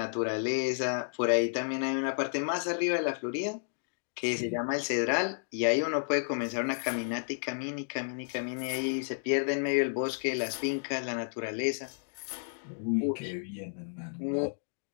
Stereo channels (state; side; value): silent; right; digital silence